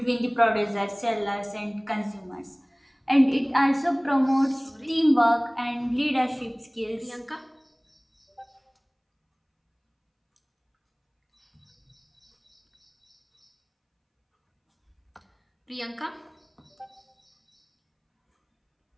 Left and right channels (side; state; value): both; identical; correlation 1.00